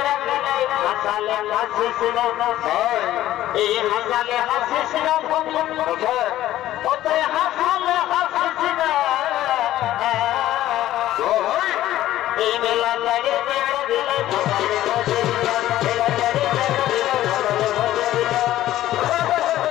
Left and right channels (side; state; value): right; quieter; 14.0 dB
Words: হাসিস না। এই হাসালে হাসিস না, অতই হাসালে হাসিস না। এই মেলা লাগে